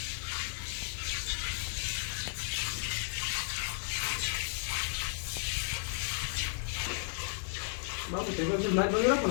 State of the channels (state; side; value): silent; right; 55 dB below the other